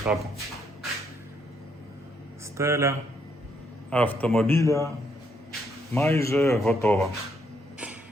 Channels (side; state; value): both; normal; correlation 0.73